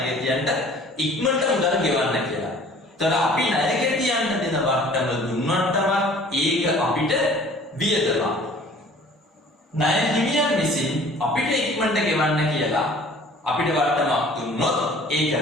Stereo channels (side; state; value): both; normal; correlation 0.50